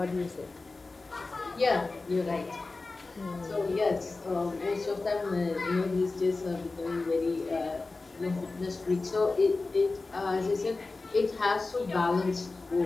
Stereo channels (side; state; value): right; quieter; 3.6 dB